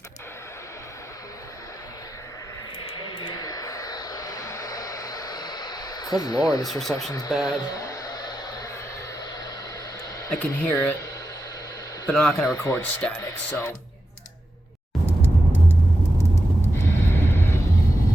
Good lord, this reception's bad. I can hear it, but I'm not gonna record static, so. I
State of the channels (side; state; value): both; normal; correlation 0.89